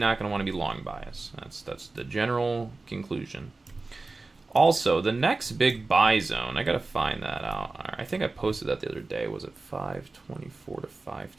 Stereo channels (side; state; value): left; quieter; 3.5 dB